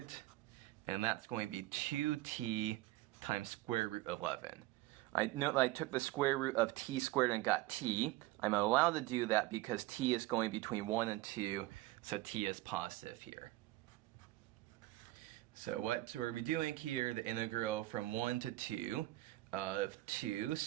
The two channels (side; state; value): left; quieter; 17.8 dB